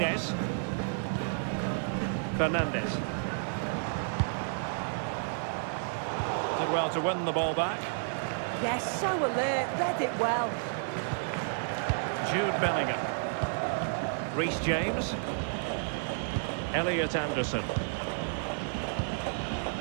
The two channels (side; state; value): left; silent; 56 dB below the other